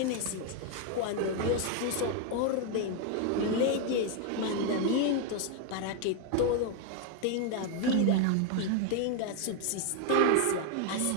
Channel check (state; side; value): different; both; correlation 0.01